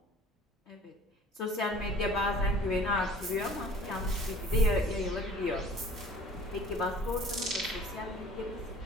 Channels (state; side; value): normal; both; correlation 0.49